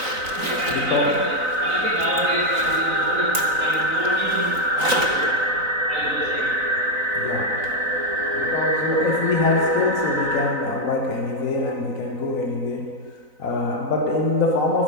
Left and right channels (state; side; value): late; left; 3.9 ms